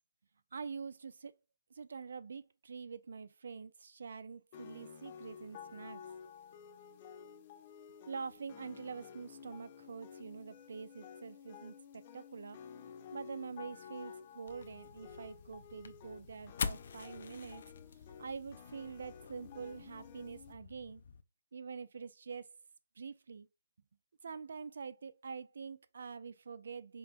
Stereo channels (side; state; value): both; inverted; correlation -0.80